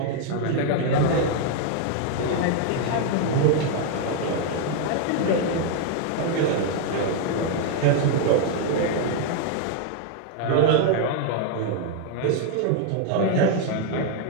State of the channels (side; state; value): both; different; correlation 0.00